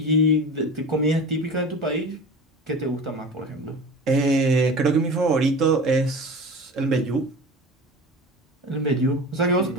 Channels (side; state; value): both; normal; correlation 0.33